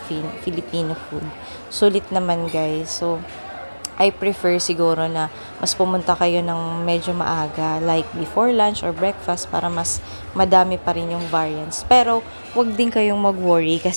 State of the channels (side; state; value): both; inverted; correlation -1.00